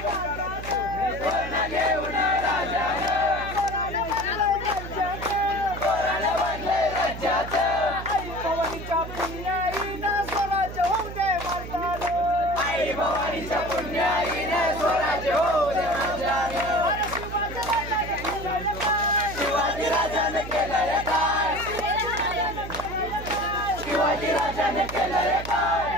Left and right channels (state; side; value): noise; right; hum, 10 dB below the sound